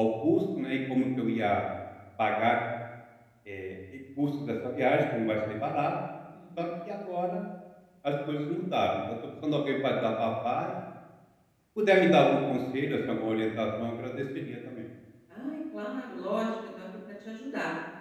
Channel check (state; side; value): identical; both; correlation 1.00